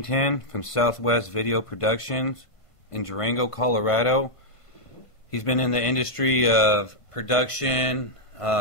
from Southwest Video Productions in Durango, Colorado. He's been in the industry of production,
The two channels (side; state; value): right; late; 1.5 ms